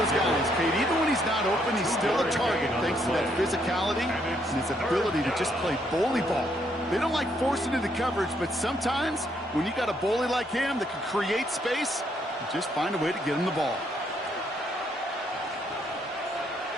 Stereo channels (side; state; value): both; normal; correlation 0.72